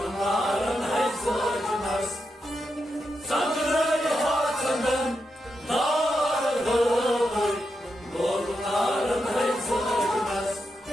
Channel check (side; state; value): both; normal; correlation 0.86